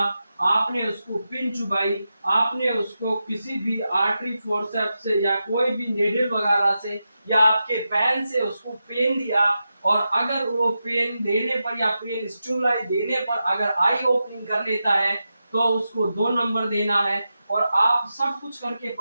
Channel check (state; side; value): inverted; both; correlation -0.90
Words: आपने उसको पिन चुबाई, आपने उसको किसी भी आर्टरी फोर्सेप्स से या कोई भी नेडल वगैरह से या आपके पेन से उसको पेन दिया, और अगर वो पेन देने पर या पेन स्टिमुलाई देने पर अगर आई ओपनिंग कर लेता है तो उसको 2 नंबर देना है। और आप सब कुछ करके